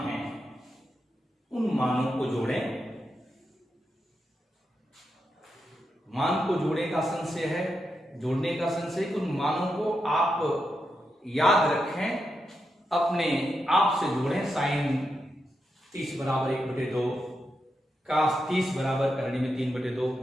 हैं उन मानों को जोड़ें। मान को जोड़ने का संशय है, जोड़ने का संशय, उन मानों को आप याद रखें, अपने आप से जोड़ें। साइन 30 बराबर 1/2, कास 30 बराबर करणी में 3/2,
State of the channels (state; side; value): normal; both; correlation 0.86